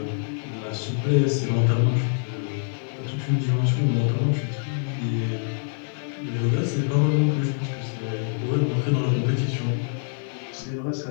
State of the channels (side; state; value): right; silent; 56 dB below the other